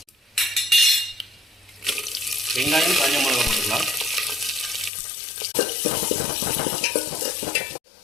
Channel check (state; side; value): drops out; right; at 4.9 s